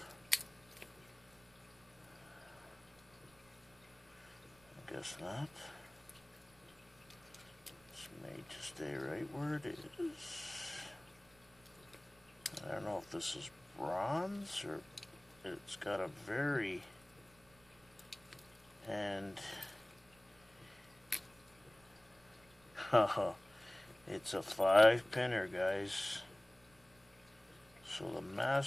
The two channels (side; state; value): right; noise; rumble, 28 dB below the sound